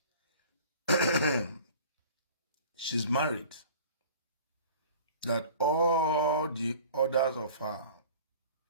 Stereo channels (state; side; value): inverted; both; correlation -0.45